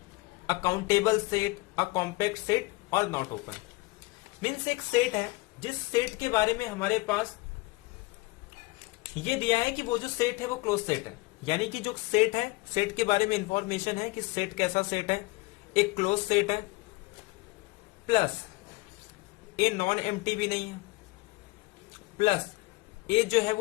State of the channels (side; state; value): right; quieter; 24.1 dB